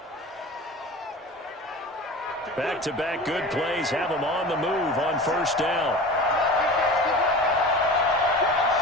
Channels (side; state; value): both; normal; correlation 0.35